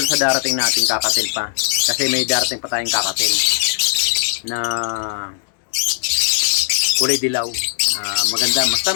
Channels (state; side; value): silent; right; digital silence